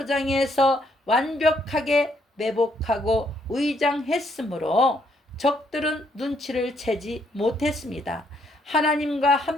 완벽하게 매복하고 의장했으므로 적들은 눈치를 채지 못했습니다. 하나님과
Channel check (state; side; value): normal; both; correlation 0.71